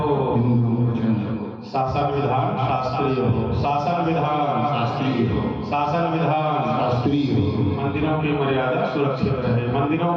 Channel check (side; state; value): both; identical; correlation 1.00